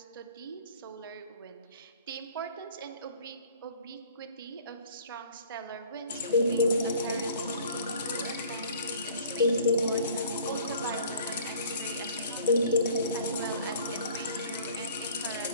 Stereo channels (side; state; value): both; inverted; correlation -0.50